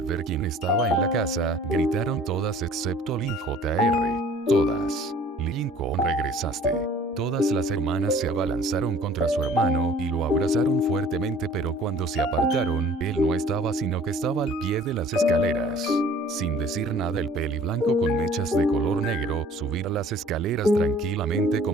ver quién estaba en la casa, gritaron todas excepto Lynn Jr. Todas. Lincoln, regresaste. Todas las hermanas se abalanzaron contra su hermano y lo abrazaron fuertemente, pero cuando se apartaron, él no estaba sino que estaba al pie de las escaleras. Sin decir nada, el peliblanco con mechas de color negro subía las escaleras tranquilamente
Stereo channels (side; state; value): both; normal; correlation 0.51